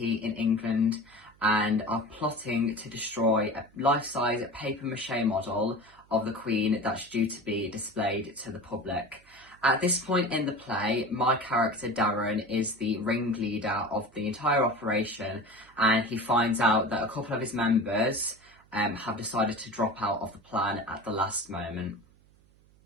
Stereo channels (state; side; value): noise; right; hum, 29 dB below the sound